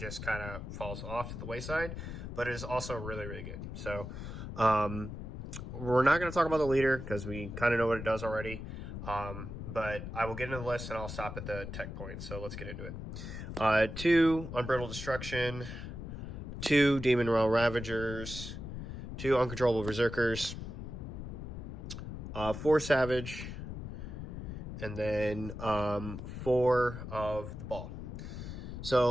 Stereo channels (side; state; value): left; noise; rumble, 8 dB below the sound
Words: kind of falls off to the wayside. But it is also really, really good. So we're not going to talk about the leader because we kind of know what it does already. But I will get into the list and I'll stop at the tech points. So let's get into it. 2 Unbrittled Destruction, 2 Demon Realm Ravagers, 2 Uncontrollable Berserkers, 4 Savage, and then 4 of the Ball.